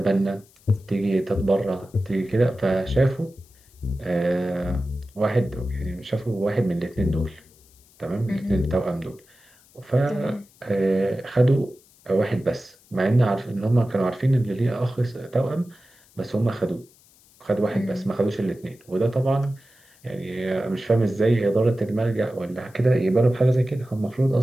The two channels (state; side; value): noise; left; hiss, 29 dB below the sound